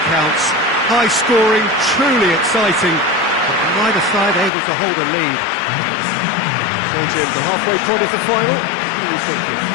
counts. High scoring, truly exciting, but neither side able to hold a lead. So Jim, the halfway point of the final, what are you thinking?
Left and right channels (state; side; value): drops out; right; at 4.5 s